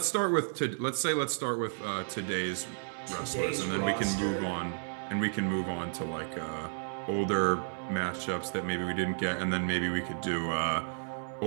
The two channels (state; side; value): silent; left; digital silence